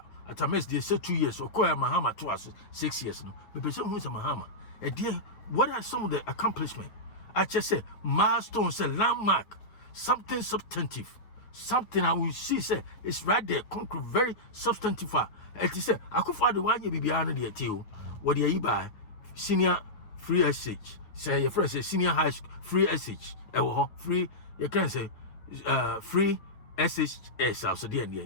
Atamels they say 2 years or Mahama to us 6 years no. The person who is a Mahama. And dear, what are some of the accomplishments? I just say milestones, a landmark, something substantive, something I will see say it's right there, concrete, very substantive. It is say I could find the one you be behind the too. What do you buy? Senior free SH. Say your friend say senior high school free SH. Free you can say free SHS also the end.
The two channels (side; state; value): right; late; 9.8 ms